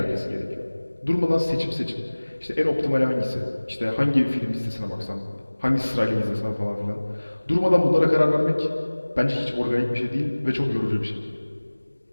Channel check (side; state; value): both; inverted; correlation -1.00